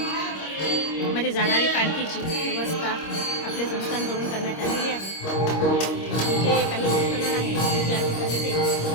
मध्ये जाणारी पालखीची व्यवस्था आपल्या संस्थांकडून करण्यात आलेली आहे। जे काही भक्तगण आहेत ज्या ठिकाणी ते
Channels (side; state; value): right; late; 26 ms